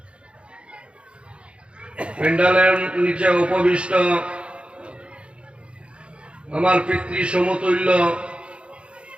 প্যান্ডেলের নিচে উপবিষ্ট আমার পিতৃ সমতুল্য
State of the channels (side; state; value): left; late; 0.058 ms